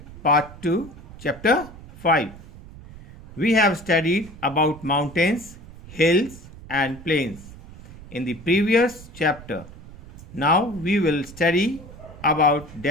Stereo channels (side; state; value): right; noise; rumble, 18 dB below the sound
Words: part 2, chapter 5. We have studied about mountains, hills and plains in the previous chapter. Now we will study about